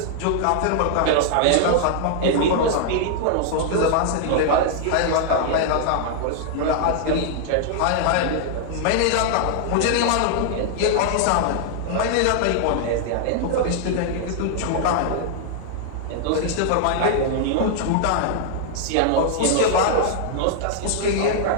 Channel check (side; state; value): both; different; correlation 0.00